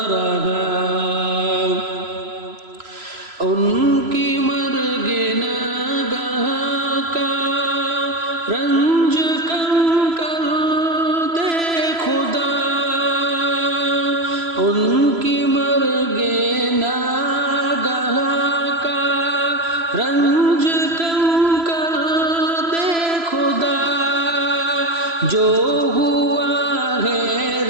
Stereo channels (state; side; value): late; left; 3.0 ms